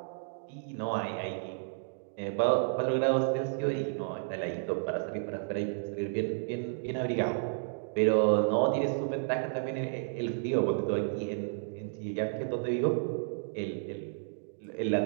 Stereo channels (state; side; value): silent; left; digital silence